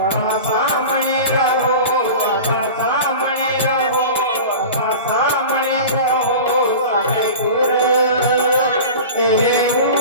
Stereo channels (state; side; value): inverted; both; correlation -0.33